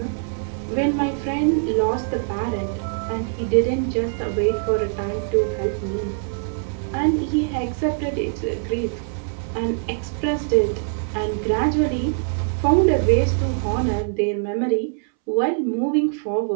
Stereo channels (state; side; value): silent; left; 64 dB below the other